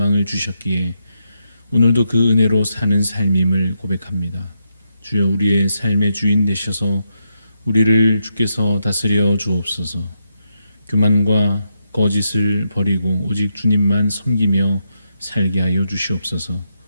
주셨기에 오늘도 그 은혜로 사는 삶임을 고백합니다. 주여, 우리의 삶의 주인 되셔서 우리를 주께서 다스려 주옵소서. 교만과 거짓을 버리고 오직 주님만 섬기며 살게 하여 주시옵소서.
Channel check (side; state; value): both; inverted; correlation -0.82